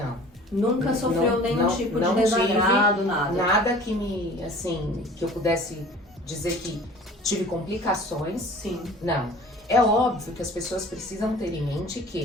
Nunca sofreu nenhum tipo de desagrado, nada? Nada que que eu pudesse dizer que tive complicações. Sim. Não. É óbvio que as pessoas precisam ter em mente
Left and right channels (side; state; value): both; normal; correlation 0.46